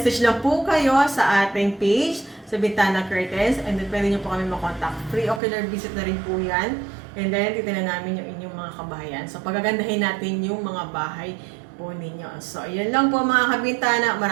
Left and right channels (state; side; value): drops out; left; at 5.4 s